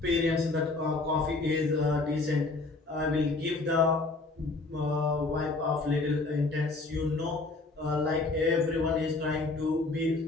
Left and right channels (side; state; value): right; quieter; 3.4 dB